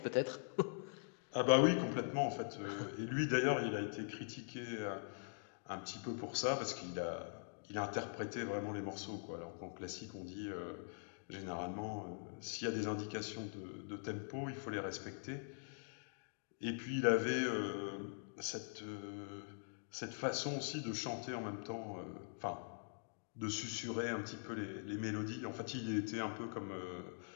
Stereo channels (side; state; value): right; silent; digital silence